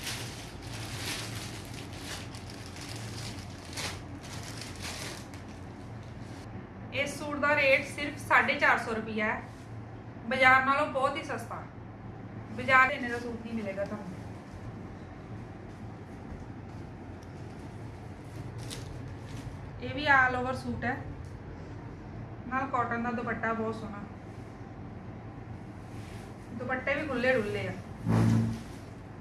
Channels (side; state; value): both; identical; correlation 1.00